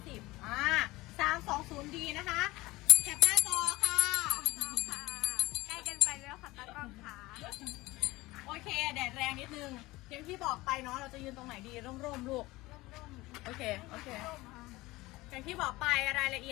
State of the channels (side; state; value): right; quieter; 20.0 dB